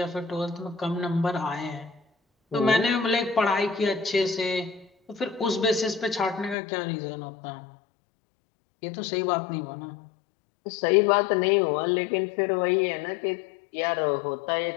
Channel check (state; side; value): drops out; right; at 6.6 s